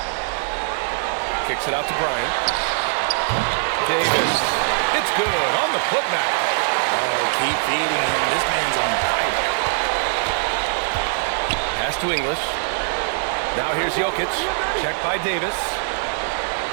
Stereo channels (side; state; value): left; silent; digital silence